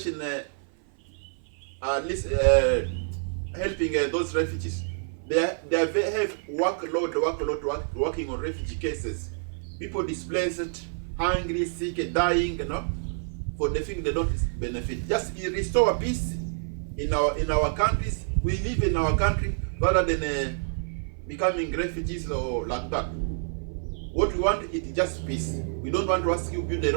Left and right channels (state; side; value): silent; left; 55 dB below the other